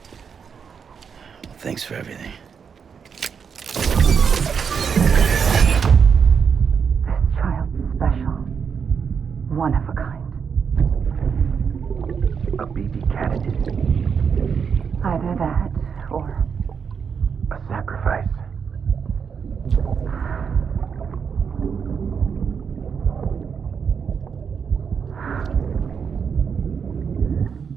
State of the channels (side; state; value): left; quieter; 6.5 dB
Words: Thanks for everything. This child's special. One of a kind. A baby candidate. Either that, or... a sacrifice.